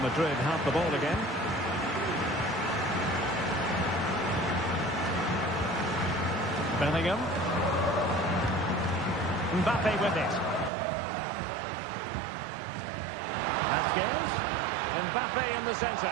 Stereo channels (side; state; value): left; drops out; at 10.7 s